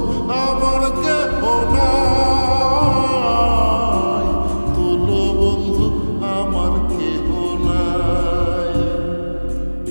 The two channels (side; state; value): both; inverted; correlation -1.00